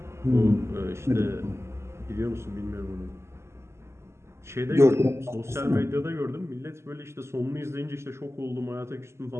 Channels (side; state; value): left; late; 0.13 ms